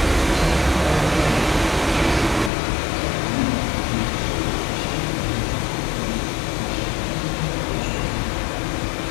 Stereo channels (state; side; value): drops out; right; at 2.5 s